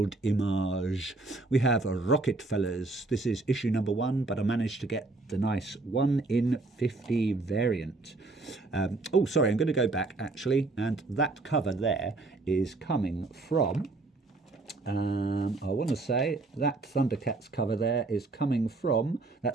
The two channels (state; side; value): quieter; left; 3.3 dB